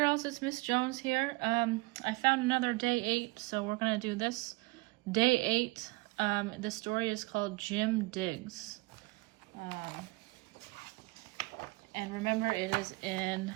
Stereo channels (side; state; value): left; quieter; 24.7 dB